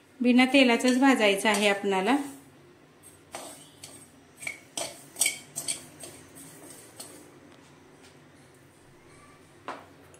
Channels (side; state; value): both; identical; correlation 1.00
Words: बिना तेलाचंच भाजायचं आहे आपल्याला।